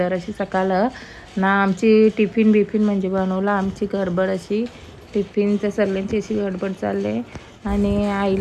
अशी सकाळ ना। आमची टिफिन बिफिन म्हणजे बनवला, आमची गडबड अशी टिफिनच्या सर्वांची अशी गडबड चालले। आणि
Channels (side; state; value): both; identical; correlation 1.00